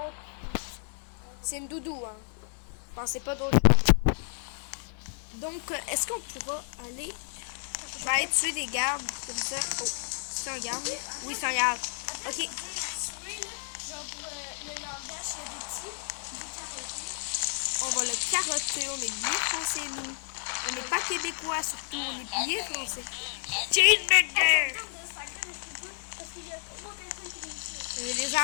c'est une doudou, hein. Pensez pas d'autre chose. Donc, est-ce qu'on pourra aller... Je vais aller tuer des gardes, comme ça. Oh, c'est un garde? Oui, c'est un garde. Attends, Ok. je veux dire, spray, là, genre pour le langage des petits, du carotté. On va le carotter, on est bien français, nous. On n'est pas québécois, surtout, on est bien français. Cheeseburger! Ça me tente de sacrer, mais je peux pas, parce qu'il y a 3 personnes qui réussissent. Il y a des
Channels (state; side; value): silent; right; 57 dB below the other